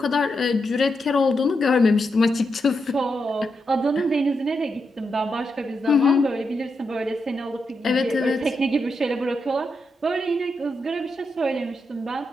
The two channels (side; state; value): both; normal; correlation 0.84